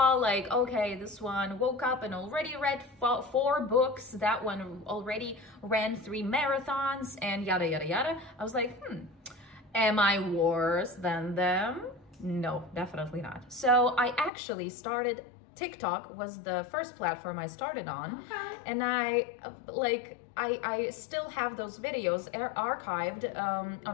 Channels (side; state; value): right; drops out; at 14.3 s